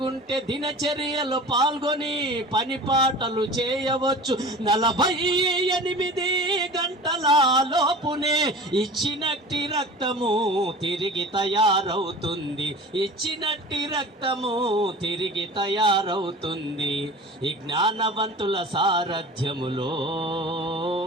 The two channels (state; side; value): normal; both; correlation 0.38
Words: దినచర్యలు పాల్గొని పని పాటలు చేయవచ్చు. 48 గంటల లోపునే ఇచ్చినట్టి రక్తము తిరిగి తయారవుతుంది. ఇచ్చినట్టి రక్తము తిరిగి తయారవుతుంది. ఈ జ్ఞానవంతుల సారథ్యములో